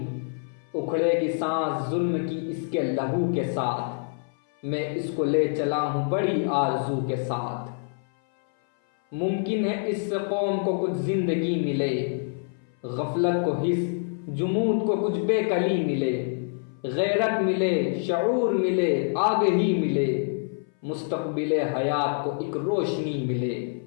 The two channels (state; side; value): silent; right; 58 dB below the other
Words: اکھڑے گی سانس ظلم کی اس کے لہو کے ساتھ، میں اس کو لے چلا ہوں بڑی آرزو کے ساتھ، ممکن ہے اس سے قوم کو کچھ زندگی ملے، غفلت کو حس جمود کو کچھ بے کلی ملے، غیرت ملے شعور ملے آگہی ملے، مستقبل حیات کو ایک روشنی ملے،